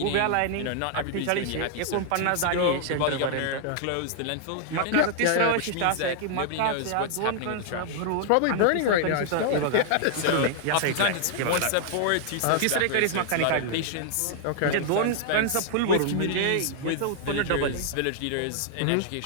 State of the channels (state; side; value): different; both; correlation 0.00